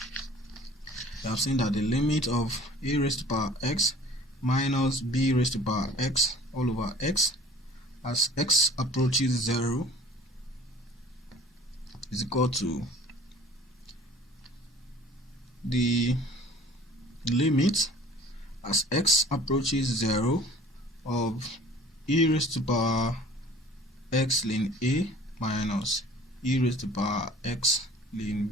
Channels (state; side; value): normal; both; correlation 0.48